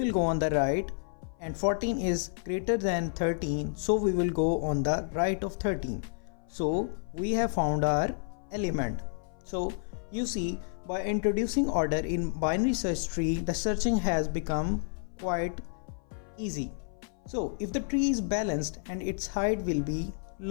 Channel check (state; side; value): silent; right; 55 dB below the other